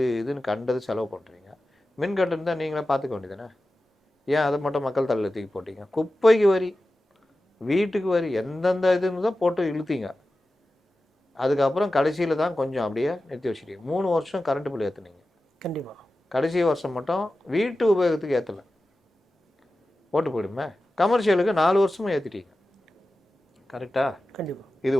இதுன்னு கண்டது செலவு பண்ணுறீங்க, மின் கட்டணம் தான் நீங்களே பார்த்துக்க வேண்டியதானே? ஏன் அதை மட்டும் மக்கள் தலையில் தூக்கி போட்டீங்க? குப்பைக்கு வரி, வீட்டுக்கு வரி, எந்தெந்த இதுன்னு தான் போட்டு இழுத்தீங்க. அதுக்கப்புறம் கடைசியில் தான் கொஞ்சம் அப்படியே நிறுத்தி வச்சுட்டீங்க. 3 வருஷம் கரண்ட் பில் ஏற்றுனீங்க. கண்டிப்பாக கடைசி வருஷம் மட்டும் வீட்டு உபயோகத்துக்கு ஏற்றலை, போட்டு போயிடுமே. கமர்ஷியலுக்கு 4 வருஷமும் ஏற்றிட்டீங்க. கரெக்டா? கண்டிப்பாக. இது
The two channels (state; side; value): normal; both; correlation 0.94